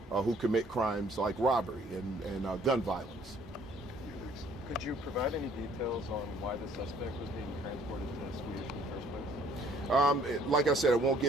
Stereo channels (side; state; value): both; normal; correlation 0.59